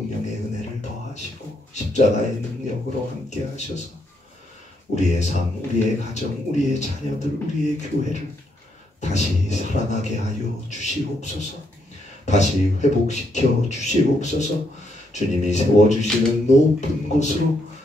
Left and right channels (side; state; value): both; normal; correlation 0.76